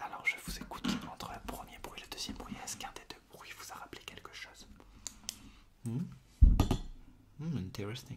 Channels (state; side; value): identical; both; correlation 1.00